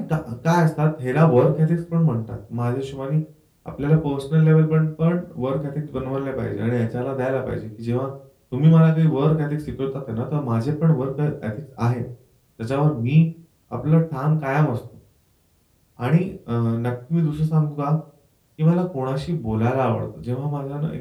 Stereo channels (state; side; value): identical; both; correlation 1.00